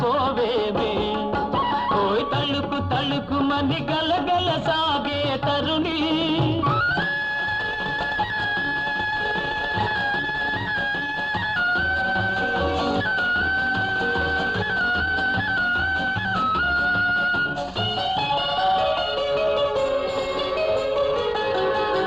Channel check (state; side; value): identical; both; correlation 1.00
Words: ఓయ్ తలుకు తలుకు మని గలగల సాగే తరుణి